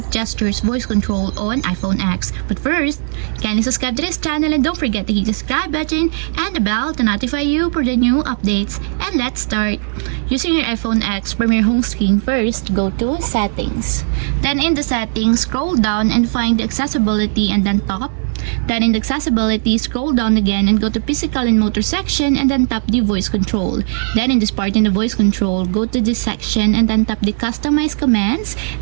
gestures voice control on iPhone X. But first, kindly subscribe to this channel and don't forget to hit the subscribe button and the bell to notify you for the new updates. And let's start. Using your iPhone X from your home screen, first go to Settings. Then in the Settings, scroll down and find the Accessibility and then Top. Then in the Accessibility, scroll down again and go to Physical and Motor section and then tap the Voice Control. Then in this part in the Voice Control, go to this section and then tap the Customize Commands.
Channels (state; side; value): silent; left; digital silence